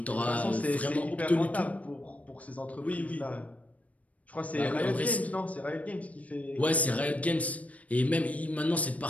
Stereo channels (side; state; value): right; late; 0.068 ms